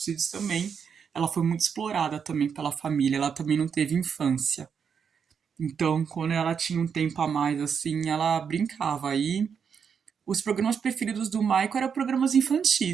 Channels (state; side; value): quieter; left; 6.8 dB